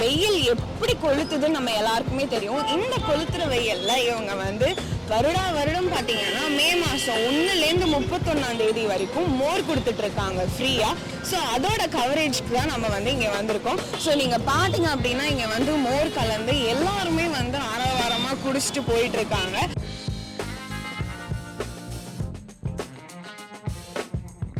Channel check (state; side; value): identical; both; correlation 1.00